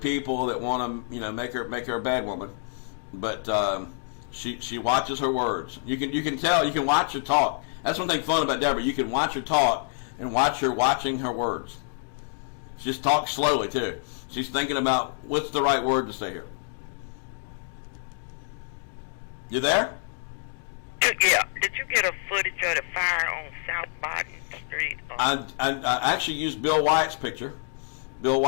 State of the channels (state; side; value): silent; right; digital silence